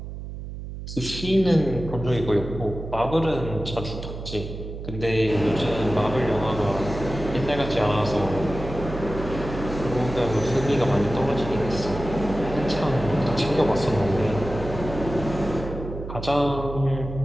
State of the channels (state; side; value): noise; right; hum, 9 dB below the sound